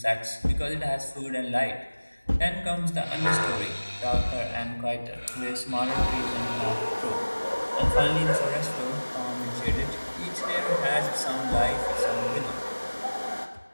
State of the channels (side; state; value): both; inverted; correlation -1.00